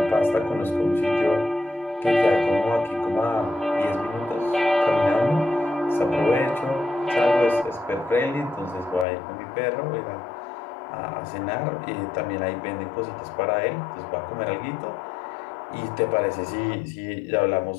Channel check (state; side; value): drops out; right; at 9.1 s